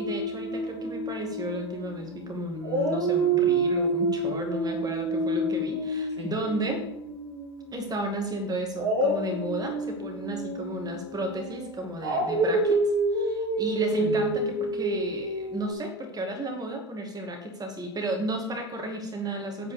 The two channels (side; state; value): both; normal; correlation 0.24